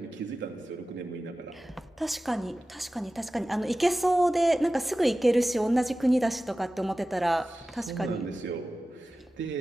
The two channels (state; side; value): normal; both; correlation 0.95